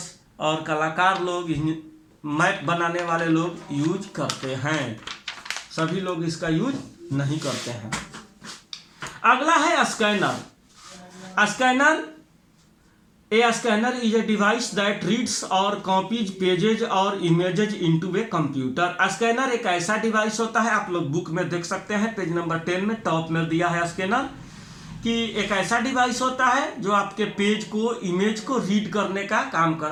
और कलाकार लोग, मैप बनाने वाले लोग यूज करते हैं। सभी लोग इसका यूज नहीं करते हैं। अगला है scanner. A scanner is a device that reads or copies pages or images into a computer। Scanner एक ऐसा डिवाइस होता है, आप लोग बुक में देख सकते हैं, पेज नंबर 10 में टॉप में दिया है स्कैनर, कि एक ऐसा डिवाइस होता है जो आपके पेज को, इमेज को रीड करने का काम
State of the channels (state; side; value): identical; both; correlation 1.00